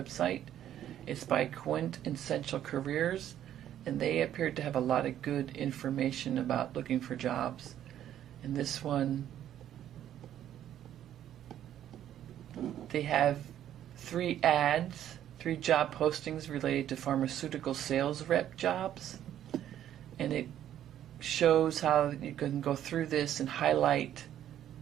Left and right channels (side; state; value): left; quieter; 11.1 dB